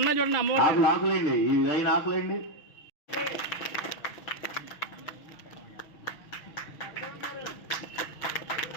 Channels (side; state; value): right; late; 6.3 ms